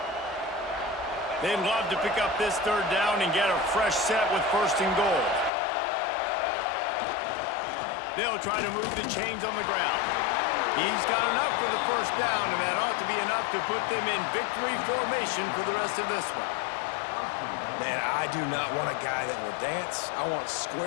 They'd love to pick up this third down and get a fresh set with 1st and goal. They'll try to move the chains on the ground. He's got enough for the first down, and that ought to be enough to put them in victory formation for the rest of this one. Man, I do not want a guy that will dance. I want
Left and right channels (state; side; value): drops out; right; at 5.5 s